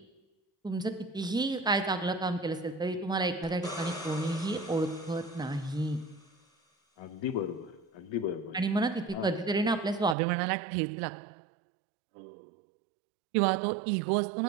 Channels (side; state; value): left; drops out; at 10.2 s